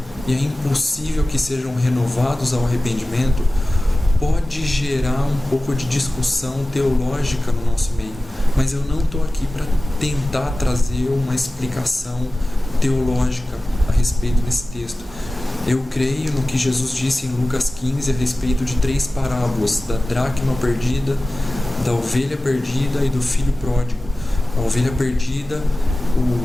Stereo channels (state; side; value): normal; both; correlation 0.96